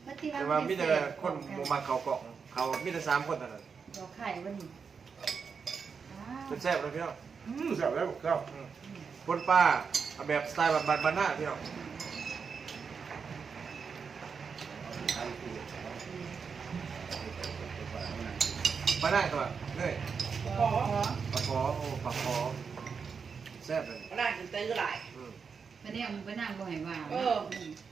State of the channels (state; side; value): quieter; left; 5.8 dB